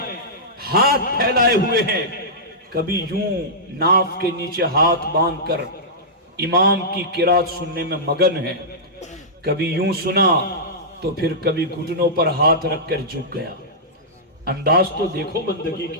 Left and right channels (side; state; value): both; normal; correlation -0.14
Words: ہاتھ پھیلائے ہوئے ہیں، کبھی یوں ناف کے نیچے ہاتھ باندھ کر امام کی قرات سننے میں مگن ہے، کبھی یوں سنا تو پھر کبھی گھٹنوں پر ہاتھ رکھ کر جھک گیا. انداز تو دیکھو بندگی